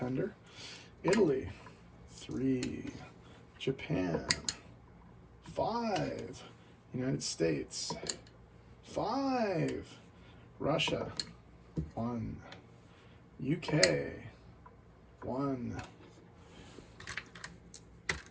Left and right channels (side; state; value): both; identical; correlation 1.00